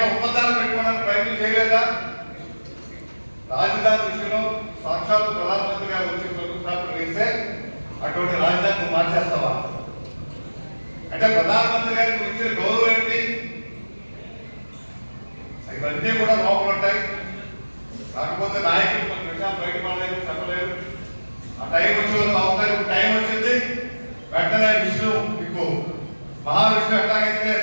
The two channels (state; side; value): inverted; both; correlation -1.00